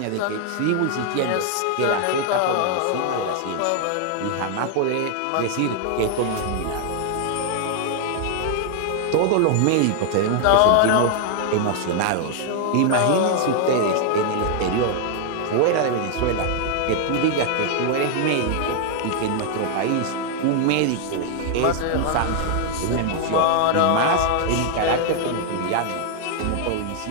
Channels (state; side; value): different; both; correlation 0.00